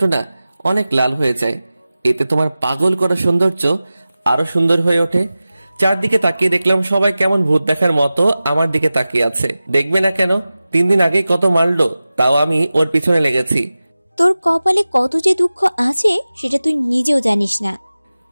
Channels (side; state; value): both; inverted; correlation -0.96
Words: না অনেক লাল হয়ে যায়। এতে তোমার পাগল করা সৌন্দর্য আরো সুন্দর হয়ে ওঠে। চারদিকে তাকিয়ে দেখলাম সবাই কেমন ভূত দেখার মতো আমার দিকে তাকিয়ে আছে। দেখবে না কেন, 3 দিন আগেই কত মারলো, তাও আমি ওর পিছনে লেগেছি। তোর কপালে কত যে দুঃখ আছে সেটা তুই নিজেও জানিস না।